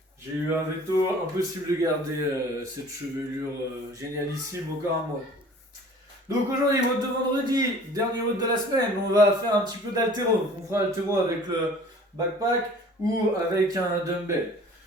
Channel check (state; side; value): normal; both; correlation 0.48